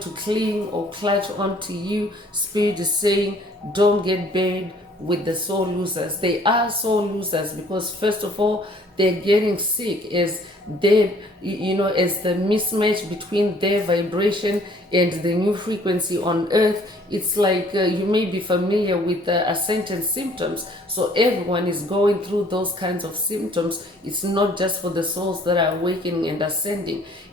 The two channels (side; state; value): both; normal; correlation 0.58